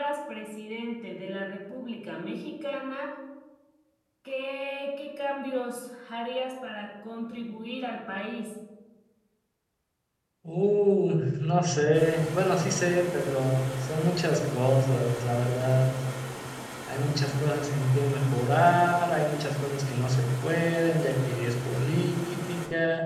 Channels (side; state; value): both; identical; correlation 1.00